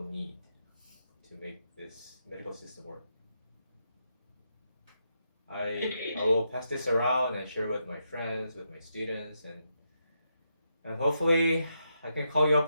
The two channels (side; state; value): both; inverted; correlation -0.82